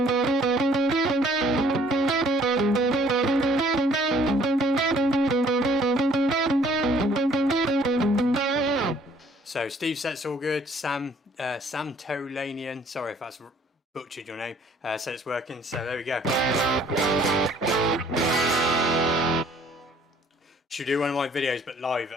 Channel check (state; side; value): normal; both; correlation 0.59